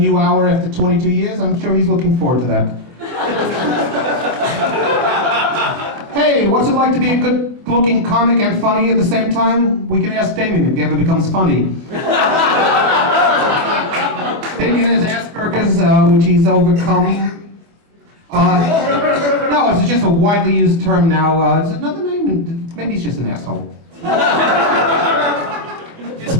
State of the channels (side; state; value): left; late; 25 ms